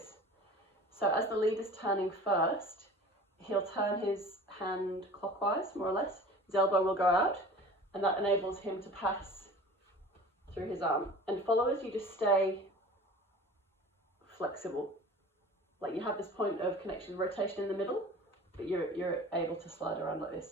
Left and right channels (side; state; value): both; normal; correlation 0.41